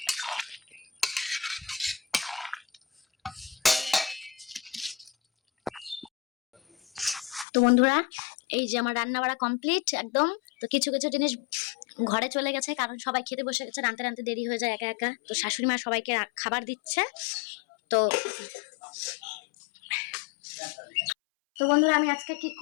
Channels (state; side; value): drops out; right; at 7.5 s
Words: তো বন্ধুরা এই যে আমার রান্না বাড়া কমপ্লিট একদম। তো কিছু কিছু জিনিস ঘরে চলে গেছে, কারণ সবাই খেতে বসে গেছে, রান্তে রান্তে দেরি হয়ে যায় একা একা। তো শাশুড়ি মা সবাইকে খাবার দিচ্ছে। তো তো বন্ধুরা আমি আজকে কি